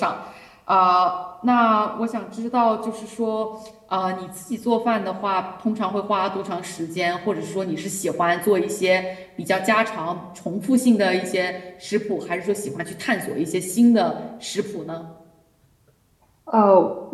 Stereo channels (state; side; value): identical; both; correlation 1.00